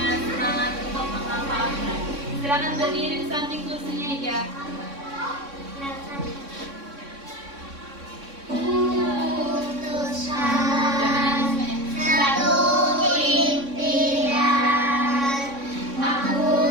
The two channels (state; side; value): late; left; 3.6 ms